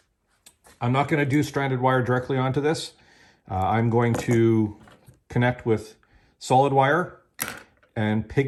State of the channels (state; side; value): identical; both; correlation 1.00